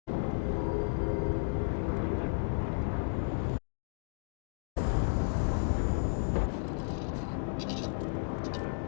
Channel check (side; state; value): right; silent; digital silence